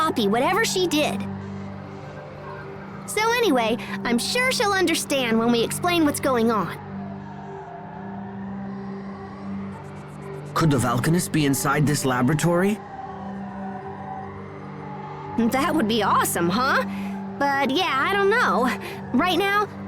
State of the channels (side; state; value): both; identical; correlation 1.00